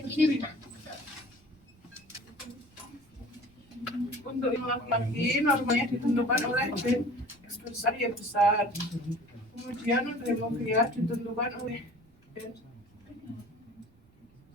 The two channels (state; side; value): noise; right; rumble, 30 dB below the sound